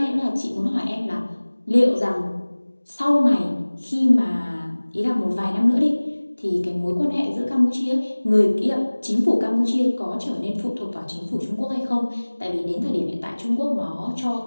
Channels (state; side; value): inverted; both; correlation -1.00